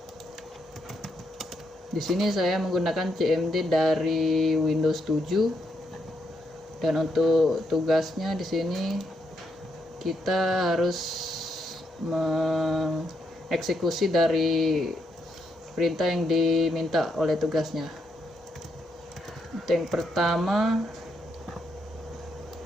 Di sini saya menggunakan CMD dari Windows 7, dan untuk tugasnya di sini kita harus mengeksekusi dari perintah yang diminta oleh tugasnya. Untuk yang pertama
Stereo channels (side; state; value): both; normal; correlation 0.78